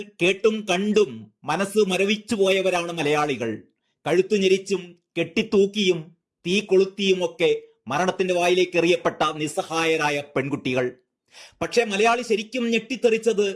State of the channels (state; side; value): identical; both; correlation 1.00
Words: കേട്ടും കണ്ടും മനസ്സ് മരവിച്ചു പോയവരാണ് മലയാളികൾ. കഴുത്തു ഞെരിച്ചും കെട്ടിത്തൂക്കിയും തീ കൊളുത്തിയുമൊക്കെ മരണത്തിന്റെ വായിലേക്ക് എറിയപ്പെട്ട നിസ്സഹായരായ പെൺകുട്ടികൾ. പക്ഷെ മലയാളി ശരിക്കും ഞെട്ടിത്തെറിച്ചത്